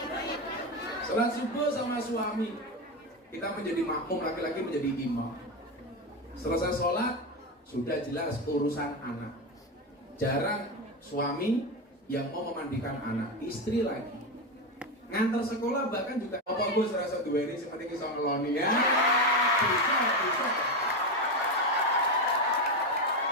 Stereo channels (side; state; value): both; normal; correlation 0.14